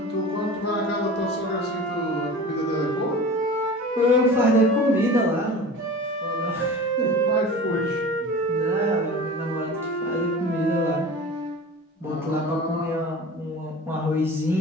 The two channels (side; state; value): both; normal; correlation 0.36